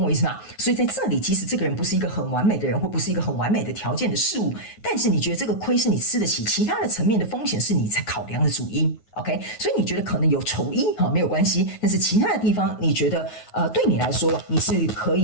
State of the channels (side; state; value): right; late; 9.4 ms